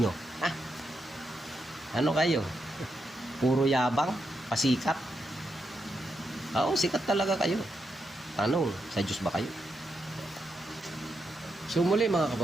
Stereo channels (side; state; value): both; normal; correlation 0.83